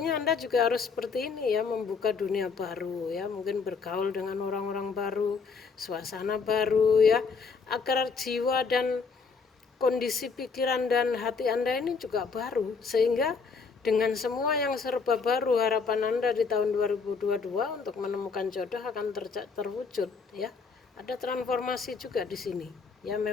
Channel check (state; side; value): quieter; right; 5.0 dB